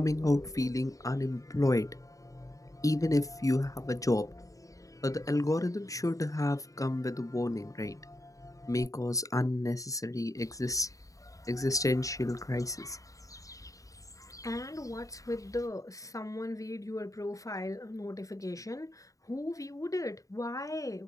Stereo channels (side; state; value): right; late; 0.16 ms